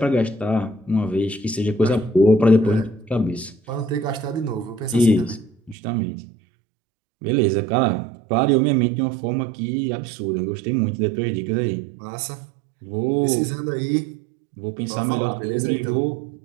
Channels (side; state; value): left; drops out; at 5.8 s